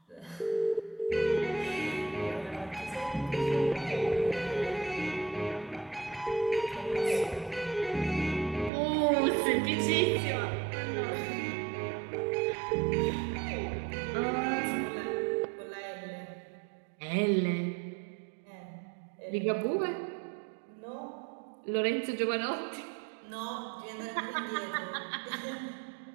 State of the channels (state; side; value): drops out; left; at 8.7 s